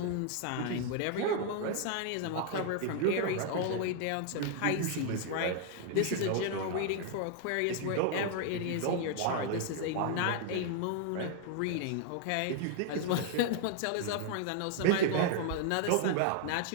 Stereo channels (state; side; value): different; both; correlation 0.00